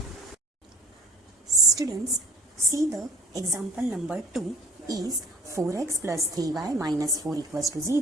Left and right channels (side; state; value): both; normal; correlation 0.48